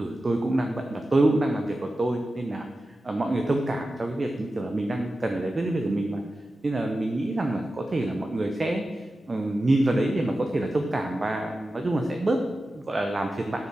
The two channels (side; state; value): both; normal; correlation 0.93